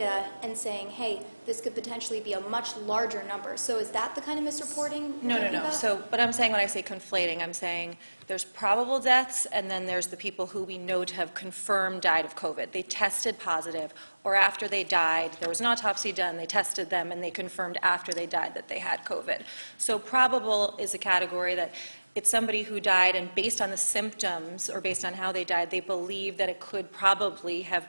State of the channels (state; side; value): inverted; both; correlation -1.00